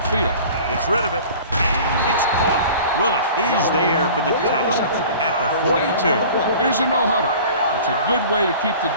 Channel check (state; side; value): inverted; both; correlation -0.43